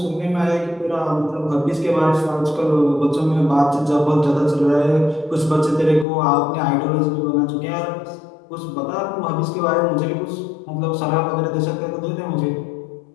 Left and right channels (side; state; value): right; drops out; at 6.1 s